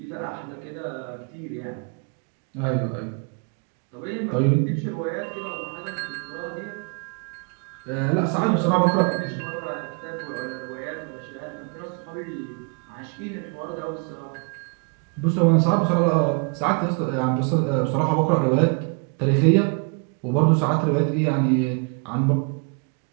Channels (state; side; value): quieter; left; 37.2 dB